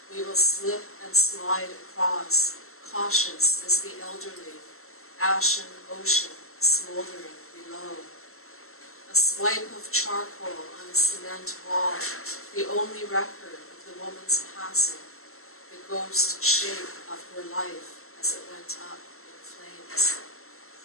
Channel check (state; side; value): late; right; 0.62 ms